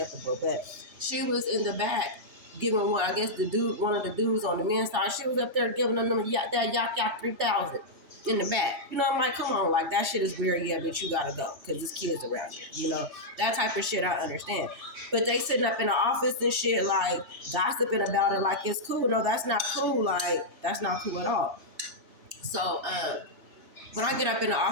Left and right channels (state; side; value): late; left; 3.3 ms